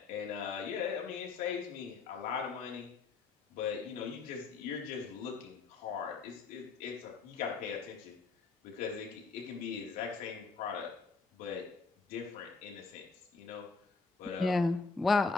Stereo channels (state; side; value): quieter; right; 4.4 dB